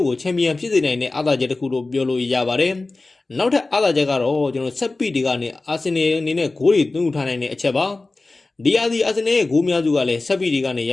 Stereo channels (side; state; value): right; quieter; 3.3 dB